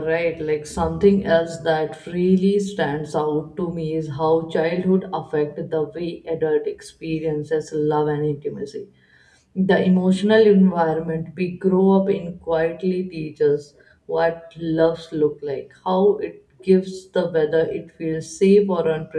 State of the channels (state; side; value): identical; both; correlation 1.00